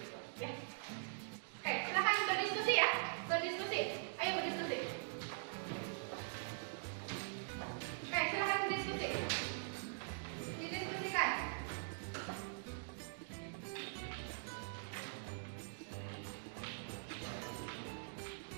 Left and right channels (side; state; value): left; silent; digital silence